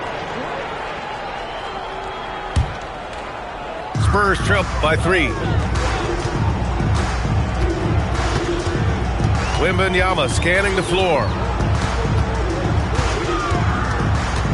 Spurs trail by 3. Wembanyama scanning the floor.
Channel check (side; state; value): both; identical; correlation 1.00